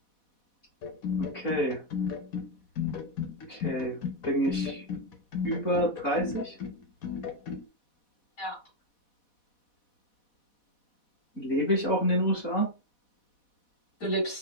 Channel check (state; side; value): late; right; 4.1 ms